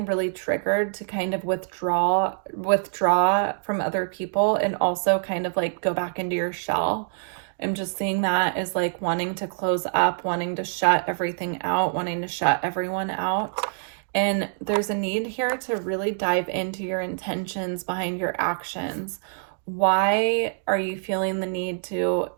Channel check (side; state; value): left; silent; digital silence